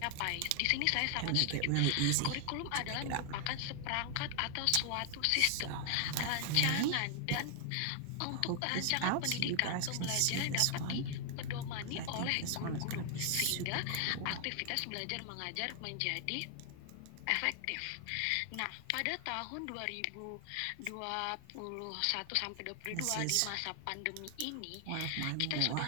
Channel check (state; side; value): different; both; correlation 0.00